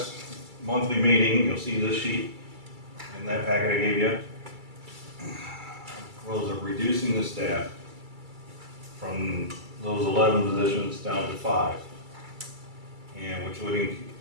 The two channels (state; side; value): late; left; 2.3 ms